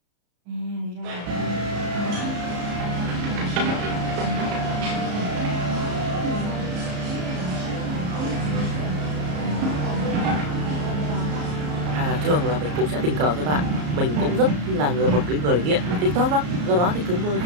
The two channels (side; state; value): left; late; 34 ms